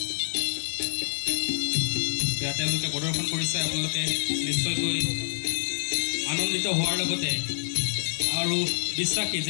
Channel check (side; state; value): right; silent; 60 dB below the other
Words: তেওঁলোকে প্ৰদৰ্শন কৰিছে, আপোনালোকে নিশ্চয়কৈ আনন্দিত হোৱাৰ লগতে আৰু বিশ্বাসী